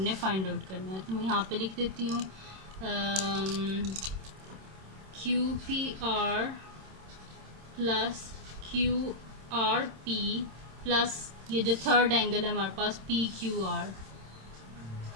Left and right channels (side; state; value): left; late; 26 ms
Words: फाइंड आउट करना है। तो मैं यहाँ पे लिख देती हूँ Q P are plus Q R P plus ये जो थर्ड एंगल है हमारे पास पी क्यू आर,